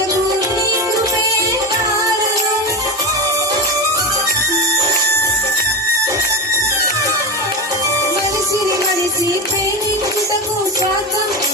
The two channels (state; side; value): normal; both; correlation 0.20